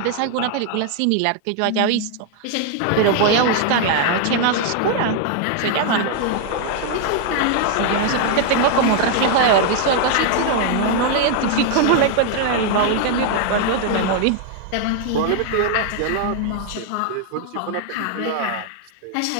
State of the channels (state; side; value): different; both; correlation 0.00